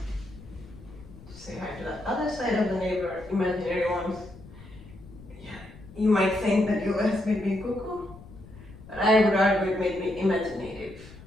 Say hi to the other side of the neighbor, imaginary ones. Yeah, you might think that US made me cuckoo, but I would argue it made me imaginative.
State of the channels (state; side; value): noise; left; rumble, 19 dB below the sound